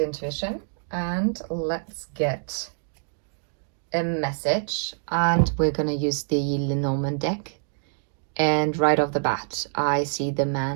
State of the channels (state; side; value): silent; left; digital silence